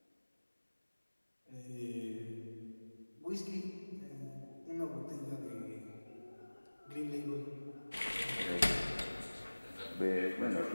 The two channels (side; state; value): both; inverted; correlation -1.00